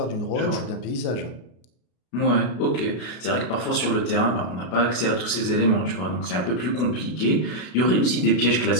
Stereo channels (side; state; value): right; late; 32 ms